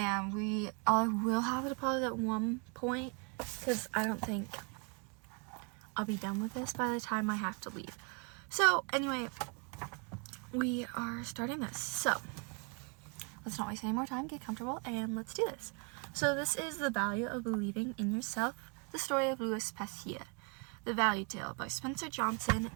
we will have to pause at one point, because I don't think I'll be done with this by the time I have to leave. So, anyway, we are starting this. So, let's not waste any more time, get comfortable, and let's do this. So, this is The Value of Believing in Yourself, the story of Louis Pasteur. The ValueTale by Spencer Johnson,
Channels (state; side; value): quieter; left; 35.4 dB